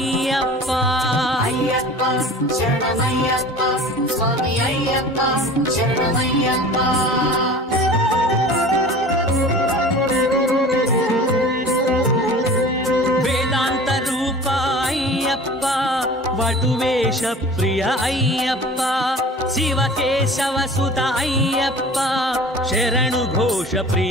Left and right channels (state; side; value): normal; both; correlation 0.41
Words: అయ్యప్ప శరణమయ్యప్ప స్వామి అయ్యప్ప శరణమయ్యప్ప వేదాంత రూప అయ్యప్ప వటువేష ప్రియ అయ్యప్ప శివకేశవ సుత అయ్యప్ప శరణు ఘోష